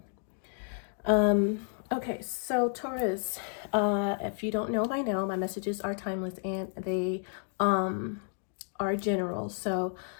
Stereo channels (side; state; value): right; silent; 57 dB below the other